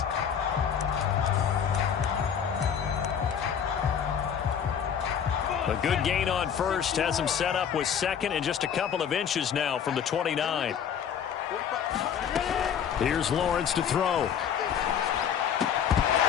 A good gain on first has him set up with 2nd and just a couple of inches now from the 29. Here's Lawrence to throw.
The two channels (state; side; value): quieter; right; 8.2 dB